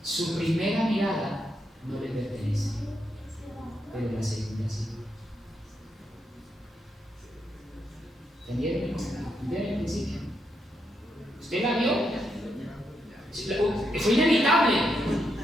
su primera mirada no le pertenece, pero la segunda sí. ¿Entendieron? ¿Entendieron el principio? ¿Usted la vio? Fue inevitable.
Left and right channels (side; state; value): both; normal; correlation 0.81